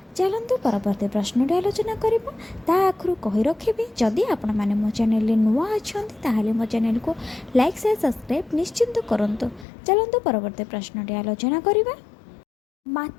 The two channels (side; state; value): right; drops out; at 9.7 s